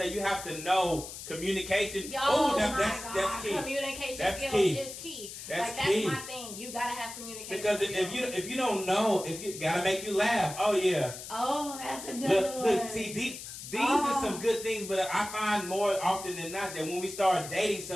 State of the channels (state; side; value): noise; left; hiss, 11 dB below the sound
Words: you have to know communication. That's key. Communication skills is key. That's my thing. You gotta have communication because skills. if you don't know, if you gotta make you laugh. Oh yeah. Oh, that's another one. Look, see, These are some good things, but I find more often than not that when we start dating